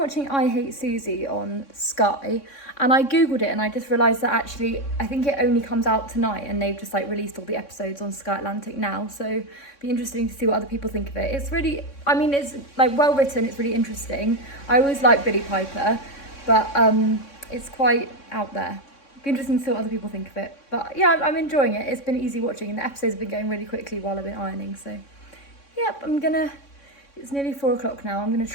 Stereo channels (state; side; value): late; right; 3.6 ms